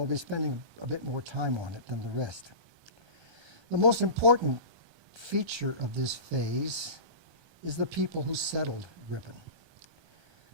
be spending a bit more time on it than the rest. The most important feature of this phase is the people who settled Ripon.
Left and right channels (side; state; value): left; late; 1.2 ms